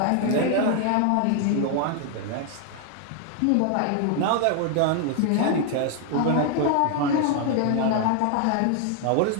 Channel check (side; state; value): both; different; correlation 0.00